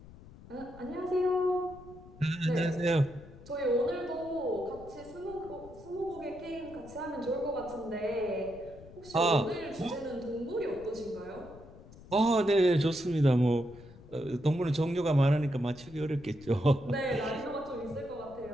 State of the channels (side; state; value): left; noise; rumble, 19 dB below the sound